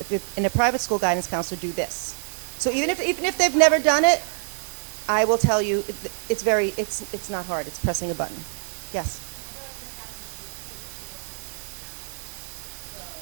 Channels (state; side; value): silent; left; digital silence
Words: in a private school guidance counselor, do this. So And even the if they've screenshot never is done it, there. I will tell you it's not hard. It's pressing a button. Yes. My daughter's in a Catholic school too, but she goes to a different county. So,